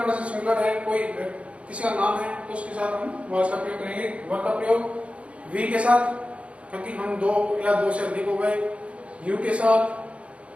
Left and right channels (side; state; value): left; late; 0.062 ms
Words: पर्सन सिंगुलर है, कोई किसी का नाम है, तो उसके साथ हम वाज का प्रयोग करेंगे। वर्ब का प्रयोग वी के साथ, क्योंकि हम दो या दो से अधिक हो गए। यू के साथ